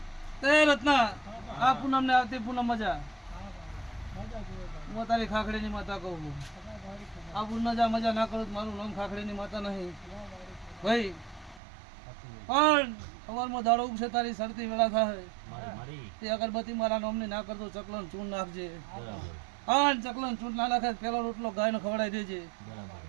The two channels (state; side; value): drops out; left; at 11.6 s